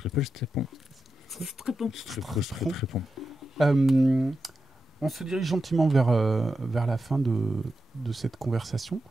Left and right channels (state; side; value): normal; both; correlation 0.89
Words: stepons. Très bon. On se dirige gentiment vers la fin de cette conversation.